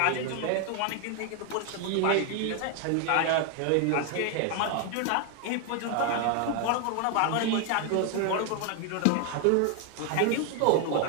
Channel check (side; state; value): both; different; correlation 0.01